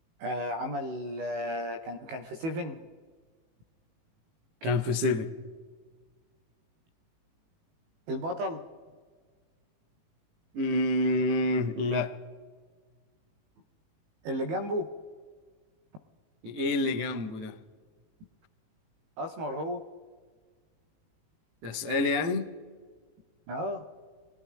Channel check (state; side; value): late; left; 18 ms